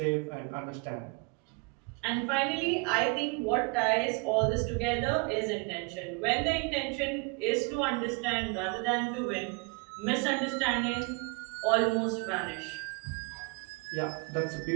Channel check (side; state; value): left; quieter; 31.5 dB